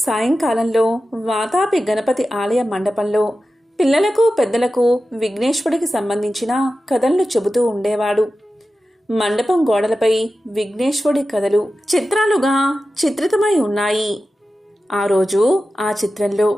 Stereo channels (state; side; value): normal; both; correlation 0.93